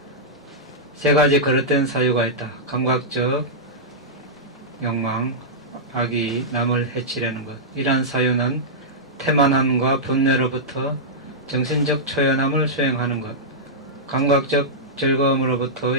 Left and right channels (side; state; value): both; normal; correlation -0.11